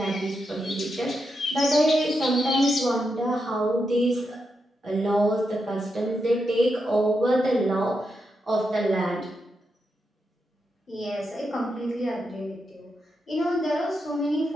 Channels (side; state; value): both; normal; correlation 0.85